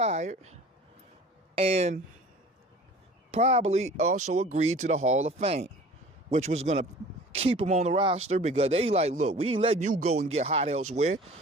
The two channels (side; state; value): both; normal; correlation 0.45